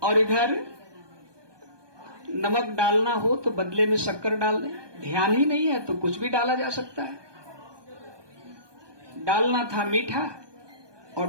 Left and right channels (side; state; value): left; late; 1.2 ms